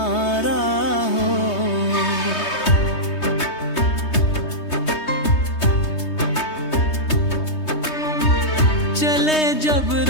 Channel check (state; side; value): late; right; 3.2 ms